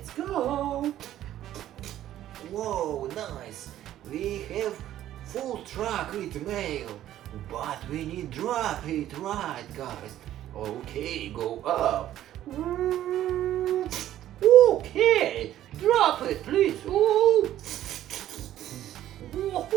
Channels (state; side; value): quieter; left; 12.6 dB